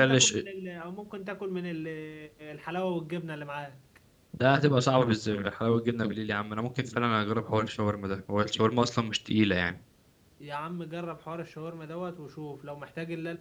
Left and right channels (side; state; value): both; identical; correlation 1.00